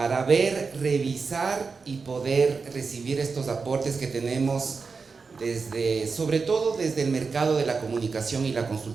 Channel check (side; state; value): left; quieter; 4.8 dB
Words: ver, revisar y poder recibir estos aportes que tenemos sobre todo desde el mercado de la comunicación y la